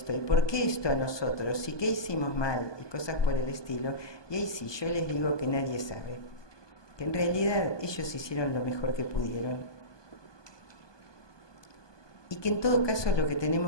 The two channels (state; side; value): late; right; 1.2 ms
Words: ¿Y por qué esto a nosotros? ¿Y qué hicimos mal? Y cosas por el estilo. Y ahí sí, yo les digo que nadie sabe. Que en realidad ellos hicieron lo mejor que pudieron. Y que en todo caso lo que